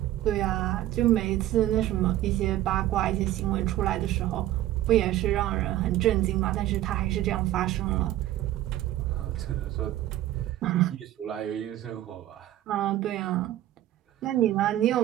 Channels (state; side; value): quieter; left; 13.9 dB